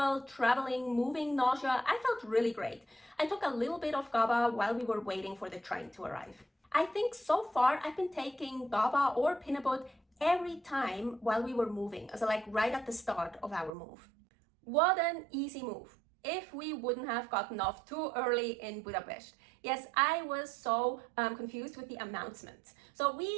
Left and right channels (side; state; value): left; drops out; at 13.7 s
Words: traveling, moving nausea, I felt really great. I took a little bit of GABA while we were waiting for the train to arrive. I think so far I've been taking GABA or Pinabot every time while we were moving, so like right at the start of our move. What an easy move. If we wouldn't have gotten off too early in Budapest. Yes, I was so confused with the announcements. So